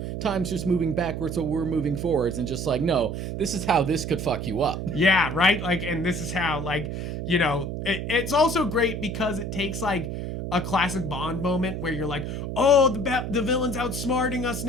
time's just moving backwards, so we're moving forwards, and just like, no, this is how this could fuck you up. Yeah, right. Like, and this is how like you know it's also great because it takes like a classic Bond moment where you're like, oh, the villain's outsmarting us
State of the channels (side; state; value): right; noise; hum, 5 dB below the sound